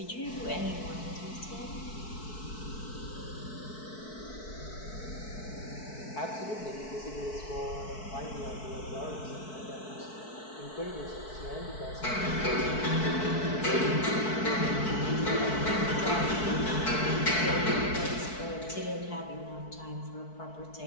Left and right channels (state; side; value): late; right; 4.6 ms